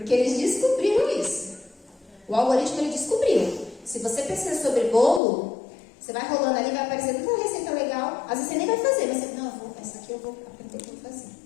eles descobriram isso. O algoritmo, ele descobriu. Se você pesquisa sobre bolo, você vai rolando ali, vai aparecer tanta receita legal. Às vezes você nem vai fazer, mas você, não, essa aqui eu vou aprender o que eu vou fazer.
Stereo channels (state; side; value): drops out; right; at 5.2 s